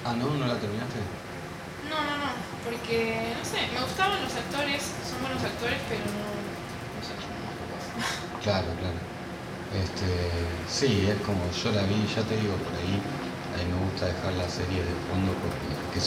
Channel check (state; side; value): identical; both; correlation 1.00